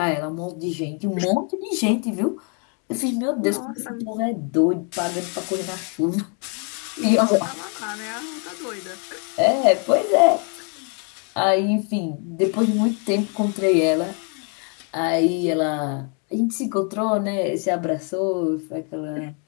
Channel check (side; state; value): right; quieter; 38.9 dB